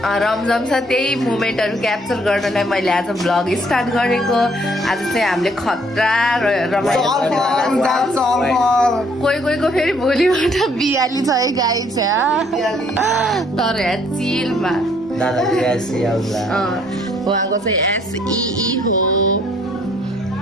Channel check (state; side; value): normal; both; correlation 0.64